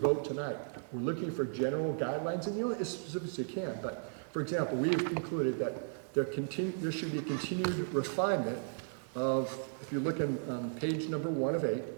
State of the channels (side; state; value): left; silent; digital silence